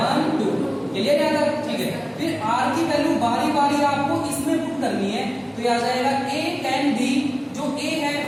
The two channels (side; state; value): both; identical; correlation 1.00